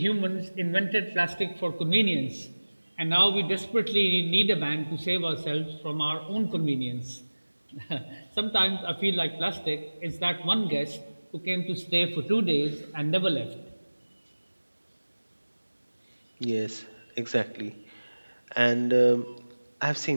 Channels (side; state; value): both; inverted; correlation -1.00